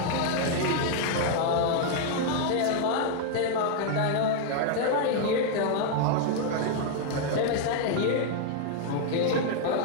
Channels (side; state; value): both; different; correlation 0.00